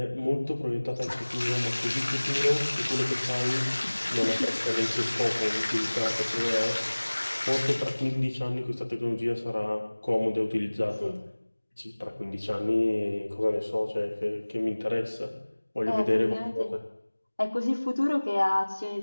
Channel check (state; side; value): inverted; both; correlation -1.00